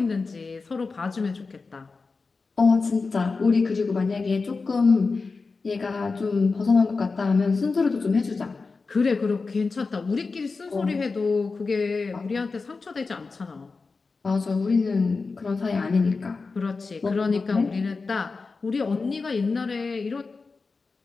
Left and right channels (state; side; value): quieter; right; 4.2 dB